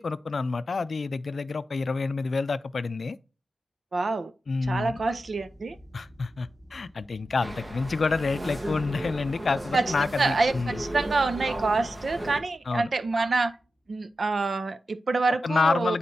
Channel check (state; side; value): normal; both; correlation 0.91